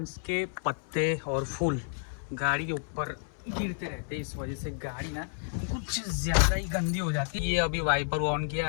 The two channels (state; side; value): silent; right; 57 dB below the other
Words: के पत्ते और फूल गाड़ी के ऊपर गिरते रहते, इस वजह से गाड़ी ना कुछ ज्यादा ही गंदी हो जाती है। ये अभी वाइपर ऑन